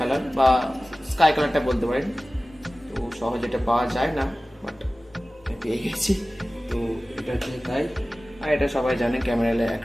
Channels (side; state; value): both; normal; correlation 0.97